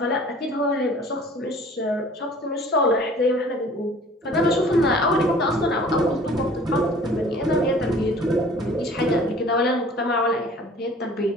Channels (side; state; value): both; normal; correlation 0.49